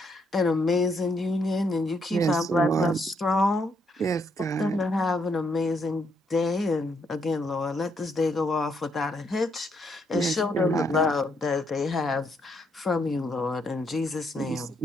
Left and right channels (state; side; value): normal; both; correlation 0.75